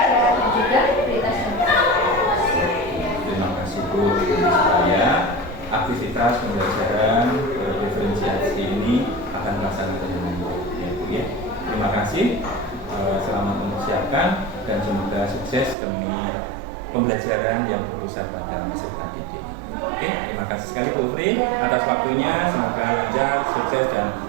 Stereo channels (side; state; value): left; drops out; at 15.8 s